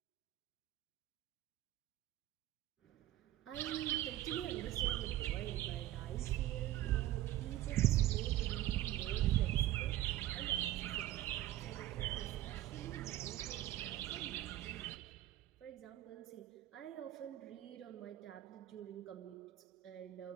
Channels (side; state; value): left; quieter; 14.5 dB